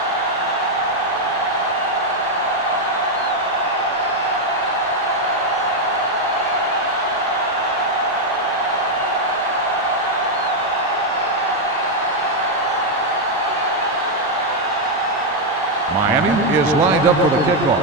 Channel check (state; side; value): normal; both; correlation 0.01